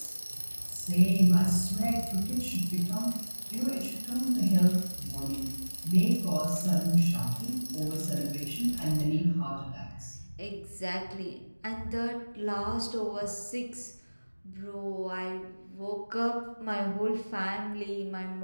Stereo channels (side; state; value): both; inverted; correlation -1.00